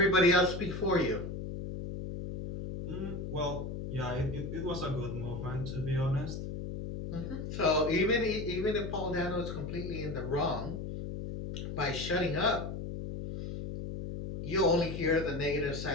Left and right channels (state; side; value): noise; left; hum, 6 dB below the sound